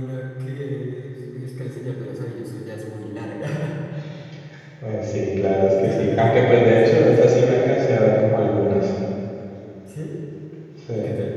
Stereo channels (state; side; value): identical; both; correlation 1.00